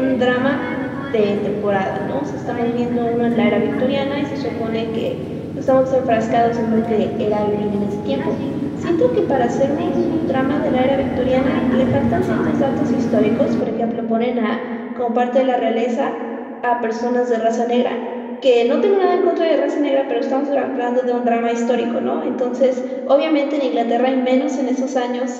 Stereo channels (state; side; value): identical; both; correlation 1.00